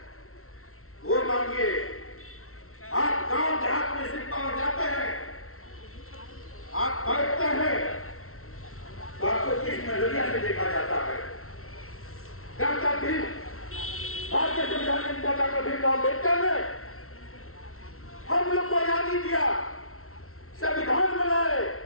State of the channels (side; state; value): right; late; 0.63 ms